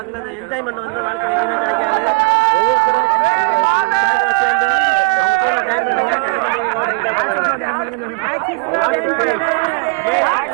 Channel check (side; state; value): left; quieter; 34.4 dB